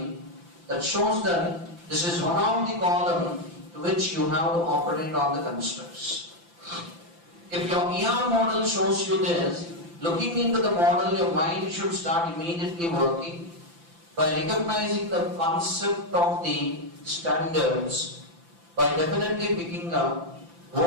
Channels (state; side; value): late; left; 5.9 ms